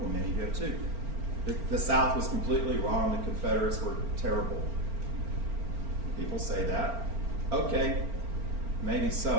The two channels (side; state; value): left; late; 4.4 ms